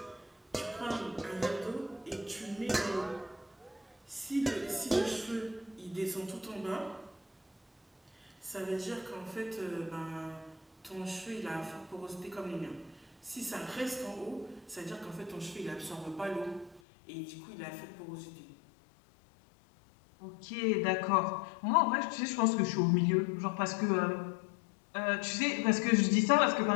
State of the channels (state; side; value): drops out; right; at 16.8 s